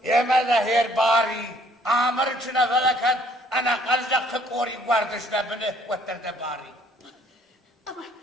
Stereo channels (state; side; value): normal; both; correlation 0.62